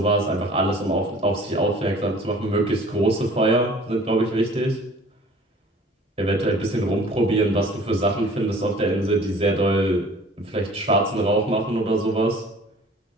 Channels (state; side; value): normal; both; correlation 0.49